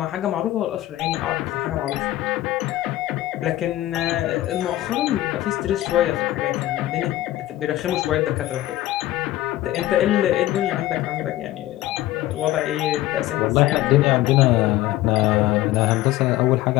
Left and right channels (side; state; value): right; quieter; 15.1 dB